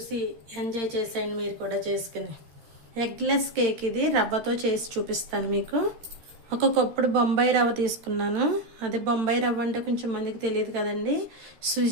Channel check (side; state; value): left; late; 13 ms